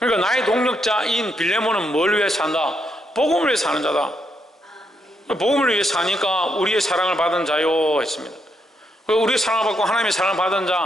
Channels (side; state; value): both; normal; correlation 0.78